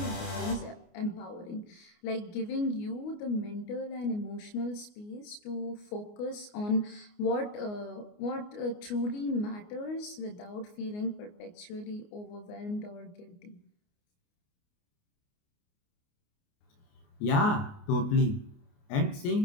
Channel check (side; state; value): right; late; 29 ms